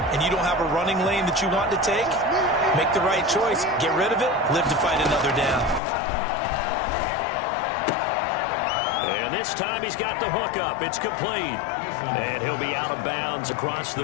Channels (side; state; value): right; drops out; at 5.8 s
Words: and you don't have a running lane that you want to take, make the right choice. Get rid of it. Live to fight another down. And this time he's got the hook up. It's complete. And he'll be out of bounds across the